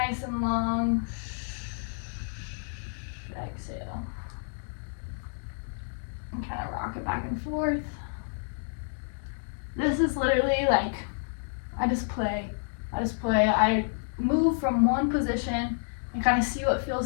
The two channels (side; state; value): right; silent; digital silence